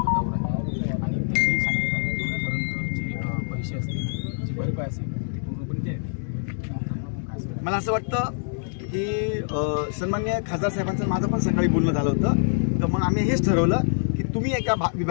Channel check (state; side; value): silent; right; digital silence